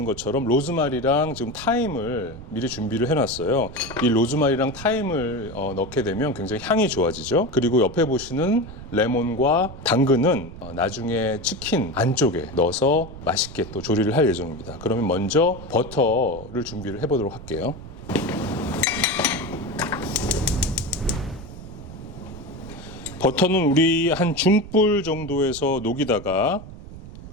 것처럼 로즈마리랑 지금 타임을 미리 준비를 해놨어요. 이 로즈마리랑 타임을 넣게 되면 굉장히 향이 좋아지죠. 그리고 옆에 보시는 레몬과 당근은 나중에 치킨 안쪽에 넣어서 맛있게 또 조리를 할 예정입니다. 그러면 먼저 버터를 준비를 해보도록 할게요. 버터는 우리 한 중불 정도에서 녹이다가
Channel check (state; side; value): noise; right; rumble, 14 dB below the sound